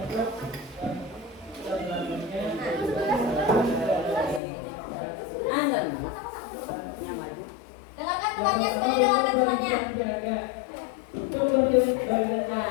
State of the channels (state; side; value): drops out; right; at 4.4 s